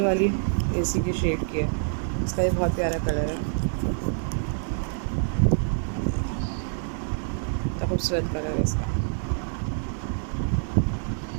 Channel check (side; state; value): left; silent; digital silence